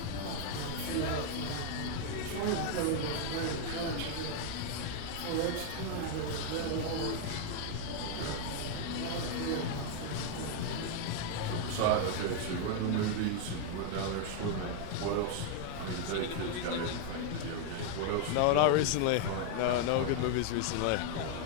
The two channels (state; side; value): different; both; correlation 0.00